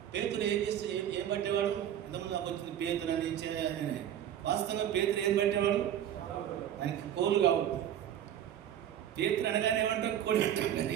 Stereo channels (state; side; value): quieter; left; 10.5 dB